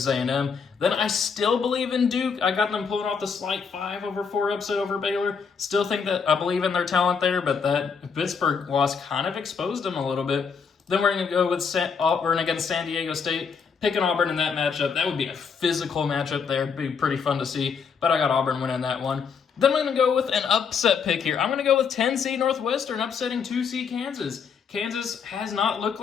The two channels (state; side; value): quieter; right; 6.0 dB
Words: A&M. Then I still believe in Duke. I got them pulling off the slight 5/4 upset over Baylor. Still think that I believe in their talent there, but that Pittsburgh loss kind of exposed them a little bit. Then we're going to go with Auburn against San Diego State. Picking Auburn in that matchup, that would be a physical matchup there. It'd be pretty fun to see, but I got Auburn winning that one. Then I'm going to go with an upset pick here. I'm going to go with 10-seed Northwestern upsetting 2-seed Kansas. Kansas has not looked